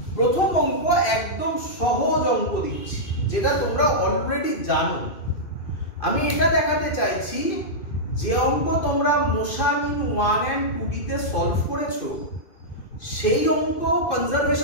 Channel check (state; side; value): late; right; 2.5 ms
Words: প্রথম অঙ্ক একদম সহজ অঙ্ক দিচ্ছি, যেটা তোমরা অলরেডি জানো। আমি এটা দেখাতে চাইছি যে অঙ্ক তোমরা মোশন ইন 1 and 2D তে সলভ করেছো, সেই অঙ্ক